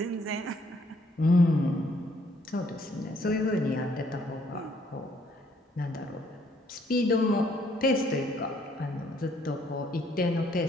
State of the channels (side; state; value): both; normal; correlation 0.66